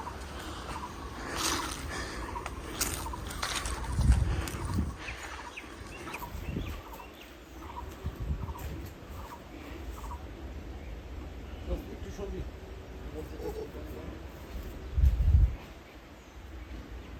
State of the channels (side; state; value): both; identical; correlation 1.00